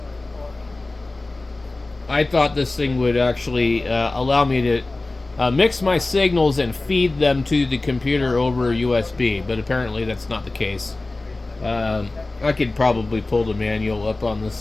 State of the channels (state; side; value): quieter; right; 3.1 dB